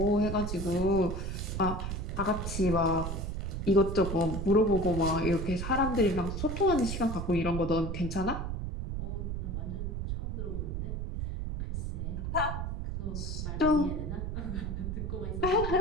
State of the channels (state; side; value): noise; right; rumble, 3 dB below the sound